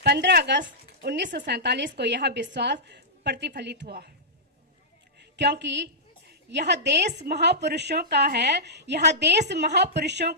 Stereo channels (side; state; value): both; normal; correlation -0.14